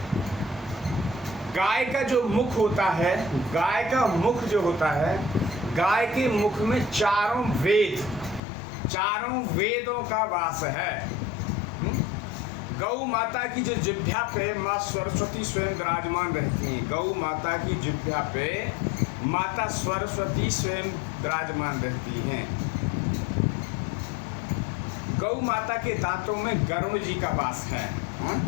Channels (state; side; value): drops out; right; at 8.4 s